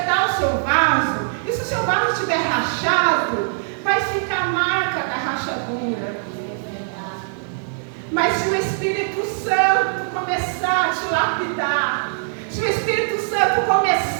o seu vaso, e se o seu vaso estiver rachado, vai ficar a marca da rachadura. Mas se o Espírito Santo começar a te lapidar, se o Espírito Santo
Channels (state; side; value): silent; left; 65 dB below the other